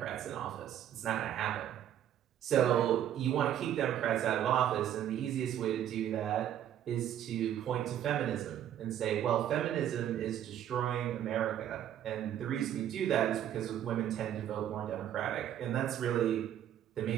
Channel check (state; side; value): quieter; left; 10.8 dB